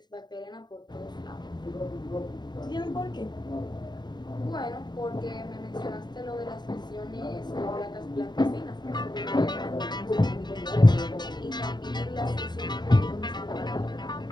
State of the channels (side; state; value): right; late; 0.21 ms